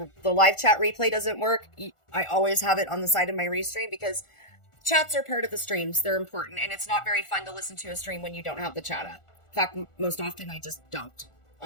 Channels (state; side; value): late; right; 1.4 ms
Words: live chat replay doesn't work, I always have it on the side of my restream because chats are part of the streams. They're important. And it's not very fun to listen to a stream when you don't have the chat up. In fact, most often I just don't